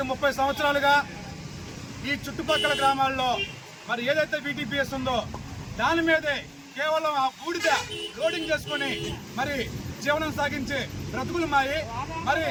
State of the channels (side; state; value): both; identical; correlation 1.00